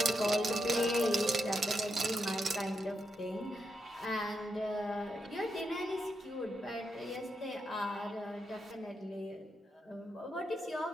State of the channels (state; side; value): normal; both; correlation 0.83